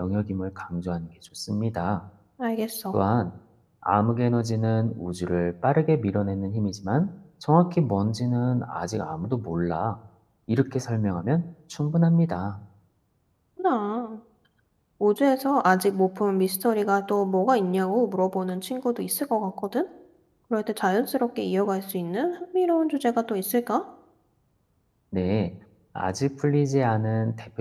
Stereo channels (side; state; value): both; identical; correlation 1.00